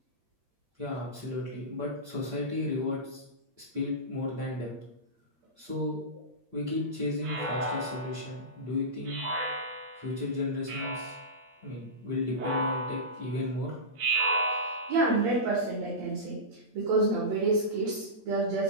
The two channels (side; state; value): left; late; 8.6 ms